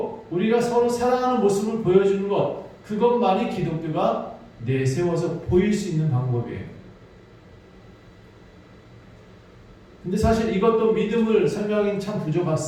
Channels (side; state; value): both; identical; correlation 1.00